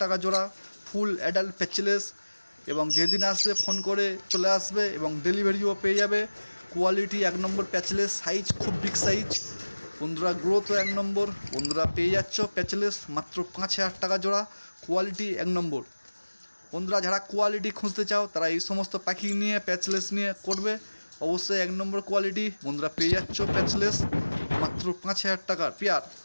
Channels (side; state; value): both; inverted; correlation -1.00